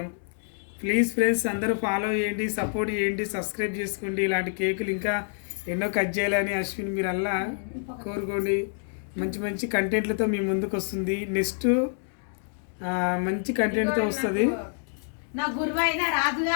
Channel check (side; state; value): right; silent; digital silence